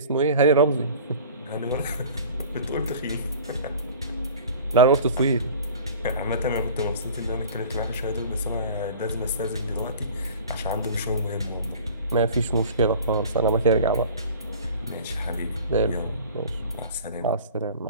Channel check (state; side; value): inverted; both; correlation -0.43